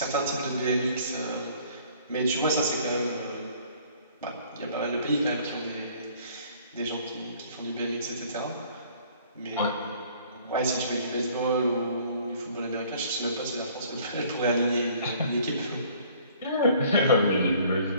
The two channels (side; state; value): both; inverted; correlation -0.56